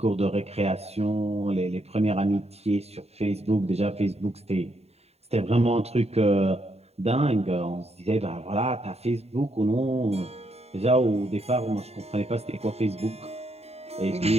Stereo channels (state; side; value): late; left; 0.30 ms